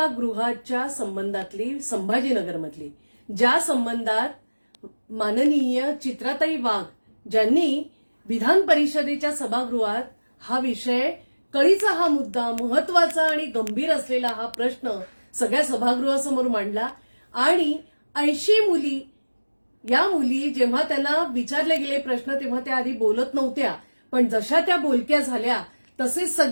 गृहाच्या संबंधातली संभाजीनगरमधली, ज्या संबंधात माननीय चित्राताई वाघ ज्यांनी विधान परिषदेच्या सभागृहात हा विषय, कळीचा हा मुद्दा, महत्वाचा आणि गंभीर असलेला हा प्रश्न सगळ्या सभागृहासमोर मांडला. आणि 80 मुली, या मुली जेव्हा त्यांना विचारले गेले प्रश्न तेव्हा त्या आधी बोलत नव्हत्या, पण जशा त्या बोलक्या झाल्या तसे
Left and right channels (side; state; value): both; inverted; correlation -1.00